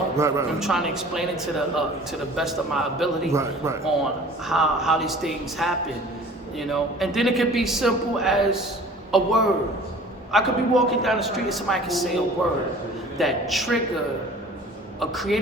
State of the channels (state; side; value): normal; both; correlation 0.46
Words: Right. I'm trying to explain it to the best of my ability right. on how these things happen, you know. And then it could be simple as a word. I could be walking down the street and somebody can say a word that trigger a